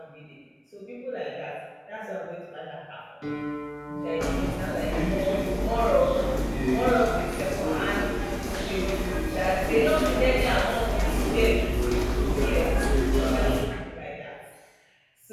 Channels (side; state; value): both; identical; correlation 1.00